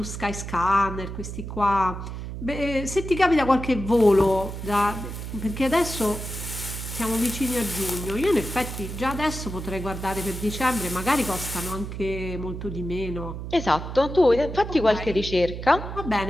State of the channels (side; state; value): right; noise; hum, 7 dB below the sound